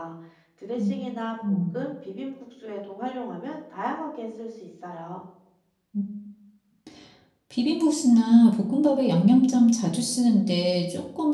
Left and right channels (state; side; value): identical; both; correlation 1.00